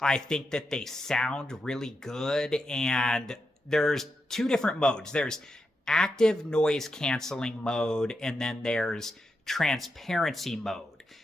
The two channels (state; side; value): normal; both; correlation 0.86